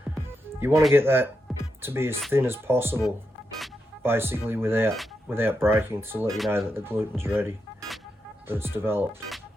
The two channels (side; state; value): both; normal; correlation 0.85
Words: You want to get that to be as thin as possible, basically without breaking, to let you know that the gluten's ready, that it's developed.